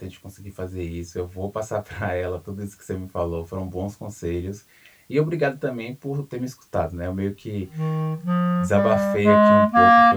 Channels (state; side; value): identical; both; correlation 1.00